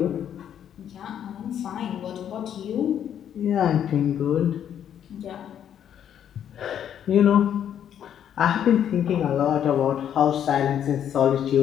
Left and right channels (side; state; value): right; quieter; 9.6 dB